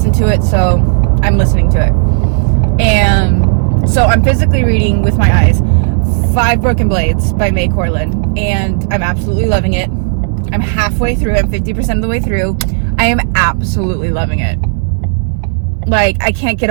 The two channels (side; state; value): left; silent; digital silence